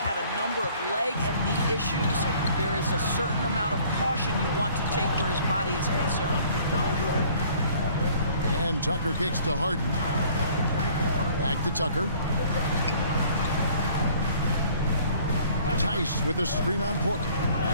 a number of leg and knee issues. There is a certain amount of caution you want to take where his body is concerned. And Tucker kicks to Harden. Back to Tucker. Tice with a screen on Porter.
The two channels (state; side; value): inverted; both; correlation -0.55